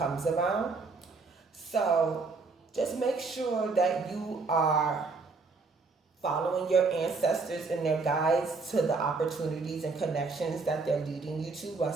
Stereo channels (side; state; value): left; quieter; 4.1 dB